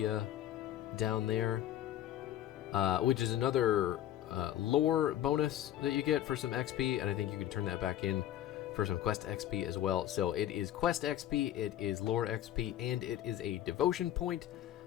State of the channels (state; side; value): quieter; right; 12.3 dB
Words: down there, which is another lore bonus that you get for some XP, and I think you can turn that back in for some quest XP as well. So it is quest XP, it is lore XP, and it is a devotion point.